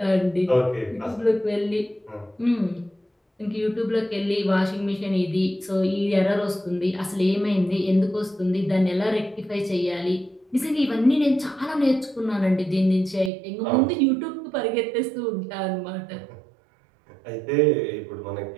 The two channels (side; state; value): left; drops out; at 13.3 s